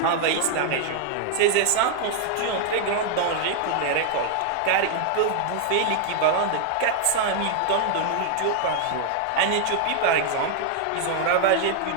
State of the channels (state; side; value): different; both; correlation 0.00